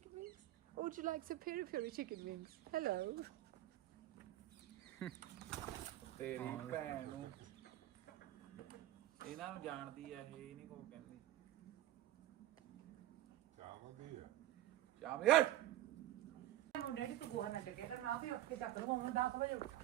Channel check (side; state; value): left; quieter; 14.4 dB